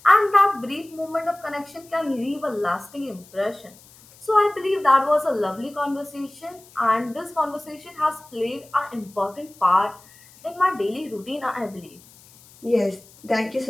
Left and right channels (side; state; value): left; noise; hiss, 25 dB below the sound